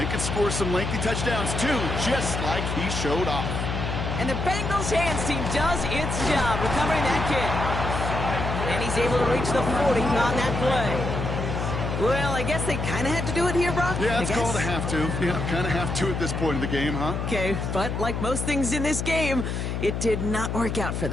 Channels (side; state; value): left; noise; hum, 2 dB below the sound